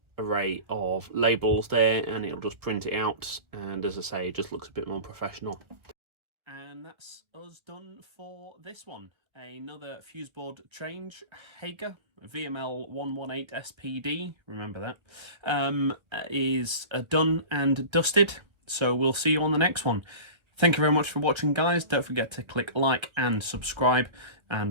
array of labels there, and it'll just print it out, and as I say, it just looks a bit more professional. And that's us done for this one. Another Fuseboard change, Hager VML 118 SPD, remember that, is done and dusted. So we'll see you on the next one. Thank you very much for watching, guys. Don't forget to click like and subscribe,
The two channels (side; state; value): left; late; 1.4 ms